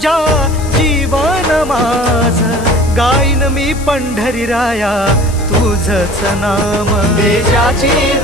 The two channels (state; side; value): noise; left; hiss, 16 dB below the sound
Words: जीवन माझ गाईन मी पंढरी राया तुझच नाम. देशाची